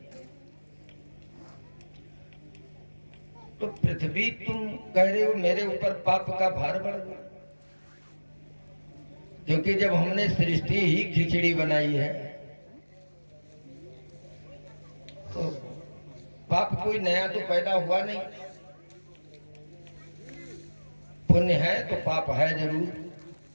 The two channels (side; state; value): both; inverted; correlation -1.00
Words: तो पृथ्वी तुम कह रहे हो मेरे ऊपर पाप का भार बढ़ गया, क्योंकि जब हमने सृष्टि ही खिचड़ी बनाई है तो पाप कोई नया तो पैदा हुआ नहीं। पुण्य है तो पाप है जरूर।